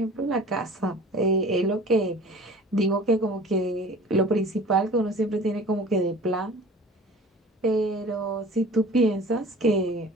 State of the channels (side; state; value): both; normal; correlation 0.44